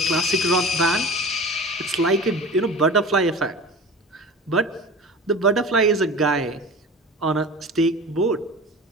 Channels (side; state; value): both; normal; correlation 0.36